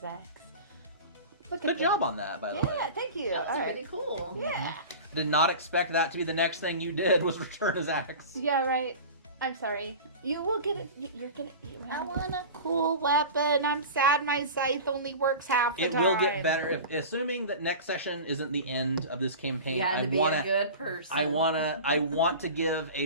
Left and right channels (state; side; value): inverted; both; correlation -0.33